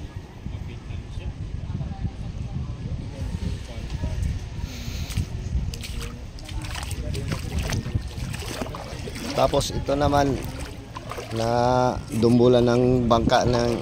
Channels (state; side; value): identical; both; correlation 1.00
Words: Tapos ito naman na dumbulan ng bangka